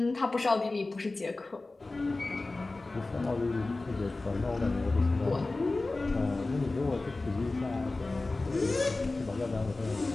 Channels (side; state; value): right; quieter; 3.2 dB